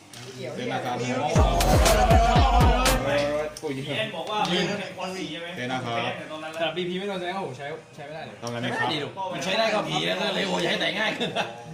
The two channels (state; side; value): identical; both; correlation 1.00